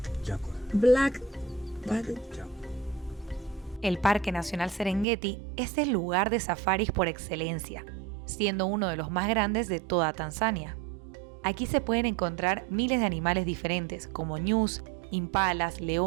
jackal. Black-backed. El Parque Nacional Serengeti es el lugar de safaris por excelencia, siendo uno de los más grandes de toda Tanzania. Aquí se pueden encontrar miles de animales diferentes, como ñus, impalas,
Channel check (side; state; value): left; drops out; at 5.1 s